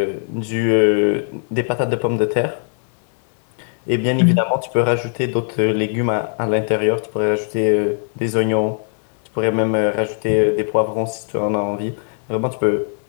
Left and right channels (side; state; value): right; silent; digital silence